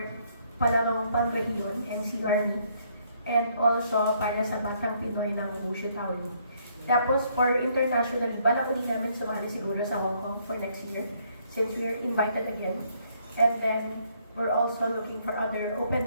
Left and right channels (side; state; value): both; inverted; correlation -0.68